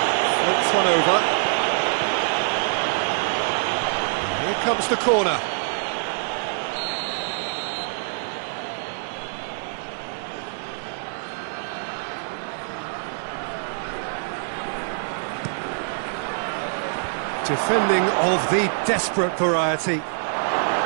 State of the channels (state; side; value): silent; left; 62 dB below the other